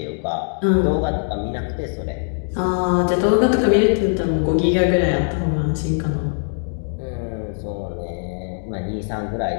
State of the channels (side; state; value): right; silent; digital silence